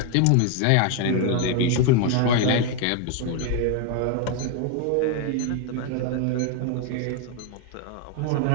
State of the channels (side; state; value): both; different; correlation 0.01